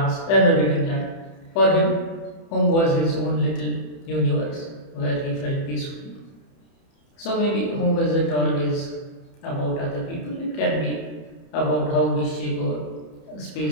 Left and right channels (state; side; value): late; right; 30 ms